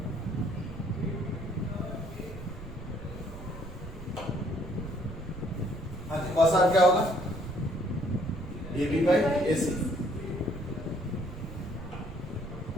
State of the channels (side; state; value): right; noise; rumble, 12 dB below the sound